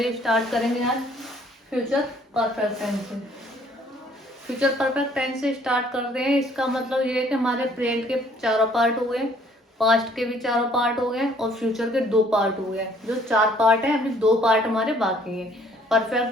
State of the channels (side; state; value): both; normal; correlation 0.61